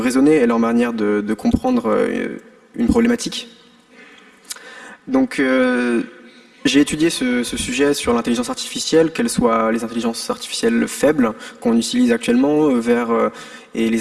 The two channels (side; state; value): both; identical; correlation 1.00